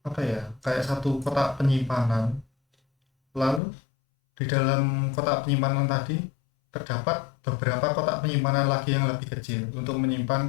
kayak satu kotak penyimpanan. Lalu di dalam kotak penyimpanan tadi terdapat beberapa kotak penyimpanan lagi yang lebih kecil untuk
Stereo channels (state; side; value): drops out; right; at 3.6 s